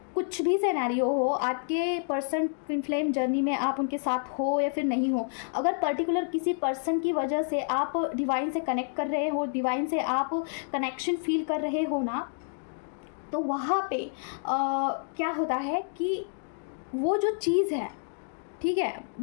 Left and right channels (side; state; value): right; silent; digital silence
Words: कुछ भी सिनेरियो हो, आपके पर्सन ट्विन फ्लेम जर्नी में आप उनके साथ हो या फिर नहीं हो, अगर पर्टिकुलर किसी पर्सन की वजह से आप डिवाइन से कनेक्ट कर रहे हो, डिवाइन से आप कनेक्शन फील कर रहे हो ना, तो वहाँ पे क्या होता है कि वो जो चीज़ है, ठीक है,